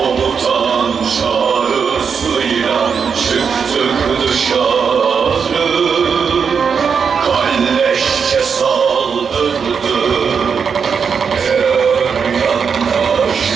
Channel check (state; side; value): quieter; left; 6.3 dB